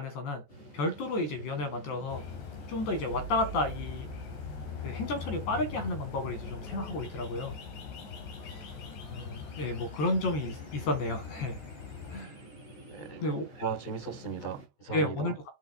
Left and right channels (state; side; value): late; right; 14 ms